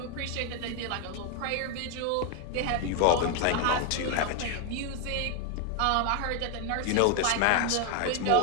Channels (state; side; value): different; both; correlation 0.01